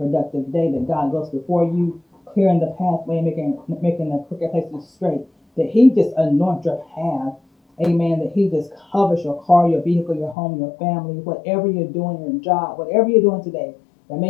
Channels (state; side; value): drops out; right; at 10.4 s